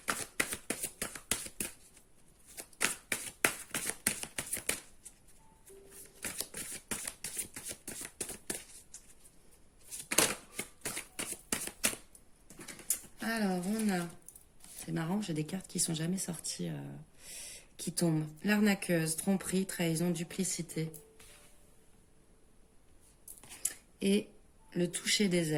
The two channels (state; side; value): identical; both; correlation 1.00